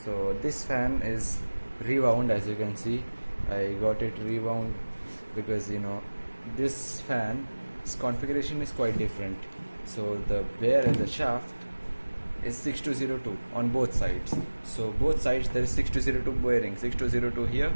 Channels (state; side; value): inverted; both; correlation -1.00